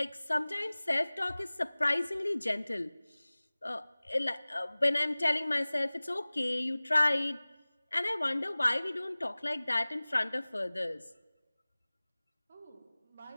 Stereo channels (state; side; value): inverted; both; correlation -1.00